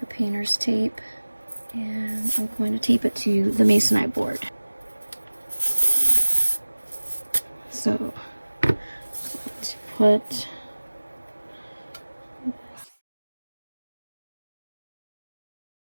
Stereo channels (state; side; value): inverted; both; correlation -1.00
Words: painter's tape, and I'm going to tape it to the masonite board. So, let's put